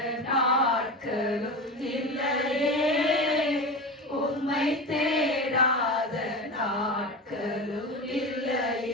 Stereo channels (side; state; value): both; normal; correlation 0.26